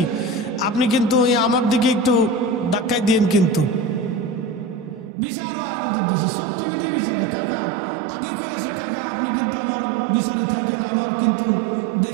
আপনি কিন্তু আমার দিকে একটু ধাক্কাই দিয়েন। কিন্তু বিচার হয় আমাদের দেশে চোখ টিভি দিয়ে বিচারে। কাকা আগে কয়ে আসে, কাকা আপনি কিন্তু আমার বিচারে থাকেন, আমার কিন্তু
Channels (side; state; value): left; drops out; at 5.1 s